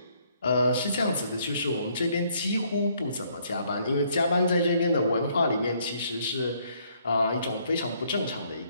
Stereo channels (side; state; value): both; inverted; correlation -0.67